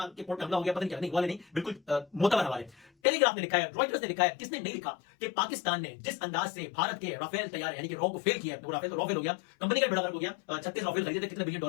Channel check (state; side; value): drops out; right; at 2.9 s